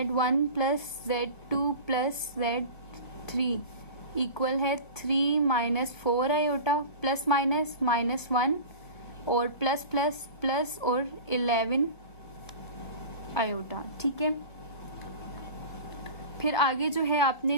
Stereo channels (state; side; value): late; right; 1.6 ms